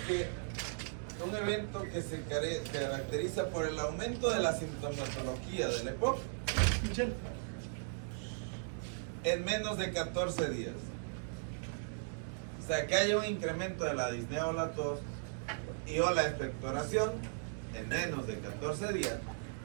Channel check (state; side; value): silent; left; digital silence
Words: que un evento que se caracteriza por el aumento de la sintomatología del EPOC en menos de 14 días. O sea, que haya un incremento de la disnea o la tos y o la expectoración en menos de 14 días